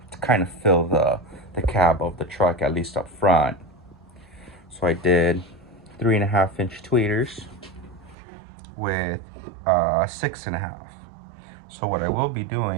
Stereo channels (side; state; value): left; drops out; at 8.2 s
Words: to kind of fill the cab of the truck, at least up front. So I did 3.5-inch tweeters with 6.5. So what I will be